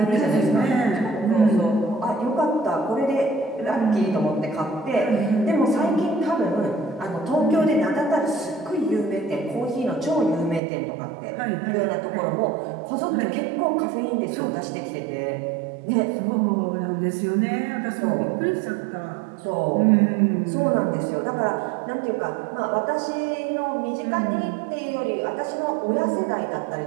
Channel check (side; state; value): left; drops out; at 10.6 s